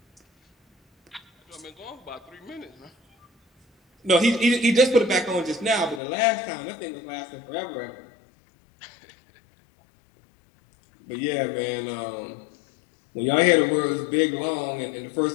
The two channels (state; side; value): drops out; right; at 6.0 s